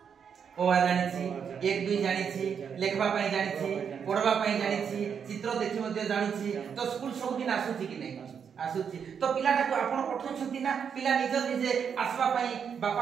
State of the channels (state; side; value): quieter; left; 7.2 dB